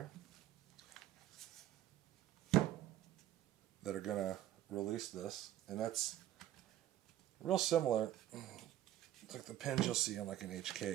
that are going to release this, and that's real similar. It's like the pins you'll see on like an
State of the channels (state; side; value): quieter; left; 12.9 dB